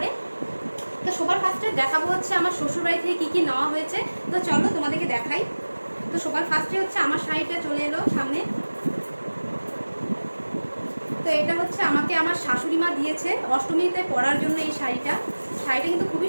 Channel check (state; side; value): inverted; both; correlation -1.00